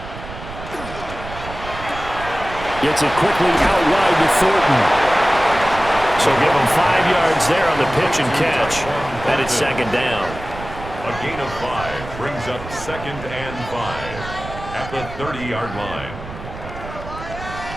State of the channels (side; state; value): right; noise; rumble, 12 dB below the sound